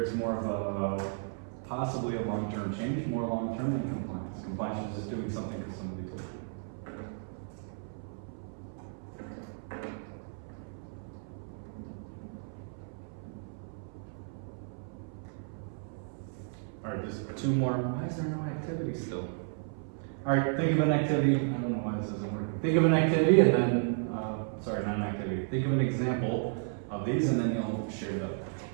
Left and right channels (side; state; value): left; silent; 56 dB below the other